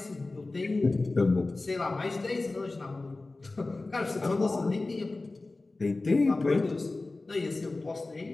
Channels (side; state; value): right; quieter; 3.3 dB